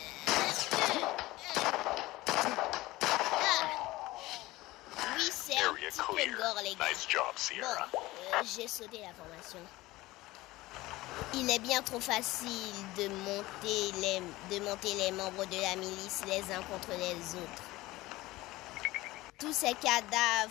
Oui, c'est un petit peu gore, les gars. Bon, j'ai sauté la formation. Il est bien trop facile de monter les membres de la milice les uns contre les autres. Tous ces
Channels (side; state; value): right; quieter; 18.9 dB